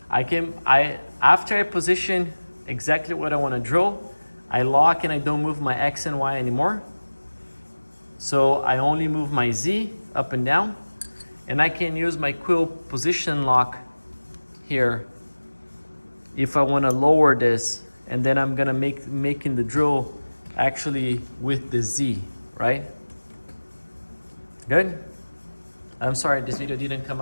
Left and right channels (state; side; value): inverted; both; correlation -1.00